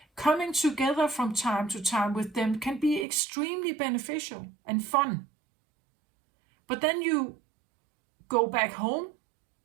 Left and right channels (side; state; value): left; drops out; at 3.1 s